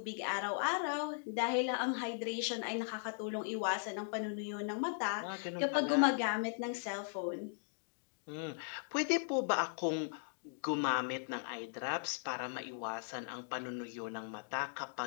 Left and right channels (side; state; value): right; silent; digital silence